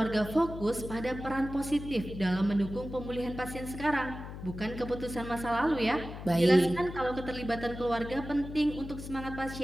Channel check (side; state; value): left; noise; hum, 10 dB below the sound